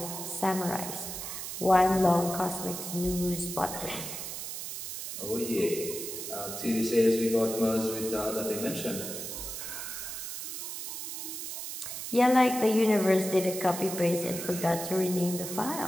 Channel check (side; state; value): right; noise; hiss, 7 dB below the sound